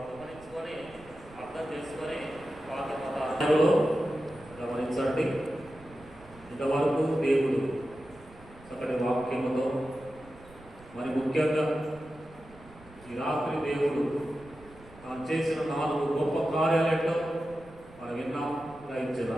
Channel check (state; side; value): noise; right; rumble, 22 dB below the sound